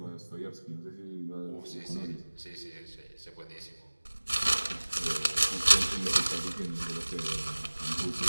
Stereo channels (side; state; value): both; inverted; correlation -1.00